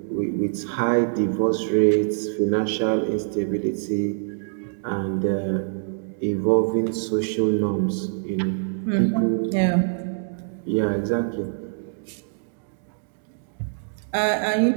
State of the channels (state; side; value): silent; left; digital silence